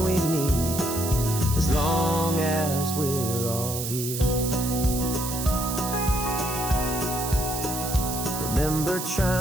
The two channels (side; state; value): right; noise; hiss, 5 dB below the sound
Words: we need, as long as we're all here. Remember